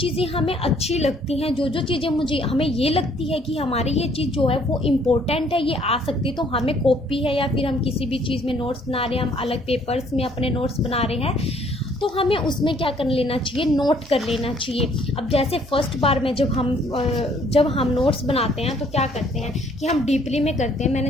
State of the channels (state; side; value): normal; both; correlation 0.62